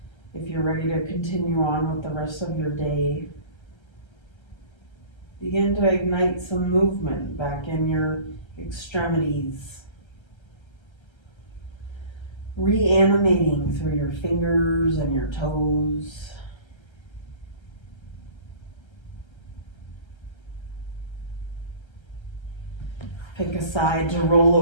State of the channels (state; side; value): late; right; 1.3 ms